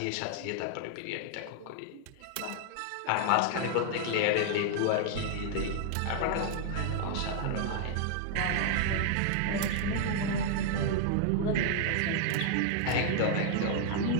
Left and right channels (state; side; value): different; both; correlation 0.00